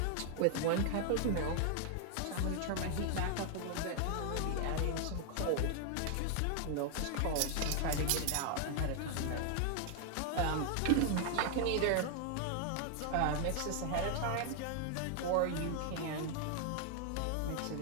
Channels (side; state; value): both; different; correlation 0.00